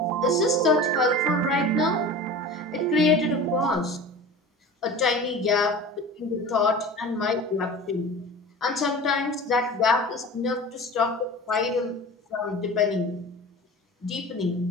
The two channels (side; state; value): both; normal; correlation 0.36